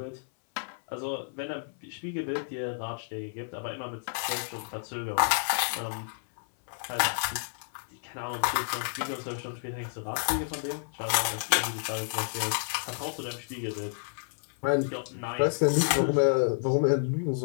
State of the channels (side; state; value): right; silent; 58 dB below the other